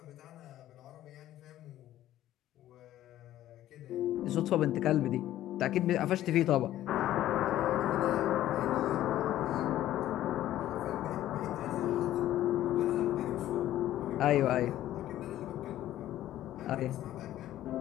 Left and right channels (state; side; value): quieter; right; 13.3 dB